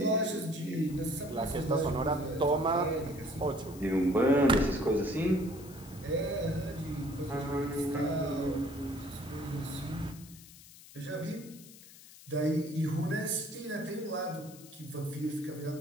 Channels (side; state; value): left; noise; hiss, 19 dB below the sound